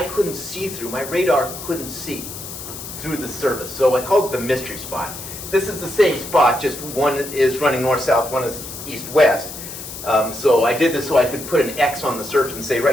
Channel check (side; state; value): left; noise; hiss, 10 dB below the sound